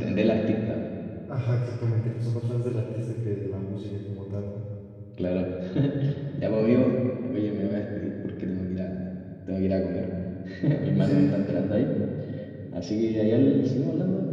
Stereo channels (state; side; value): identical; both; correlation 1.00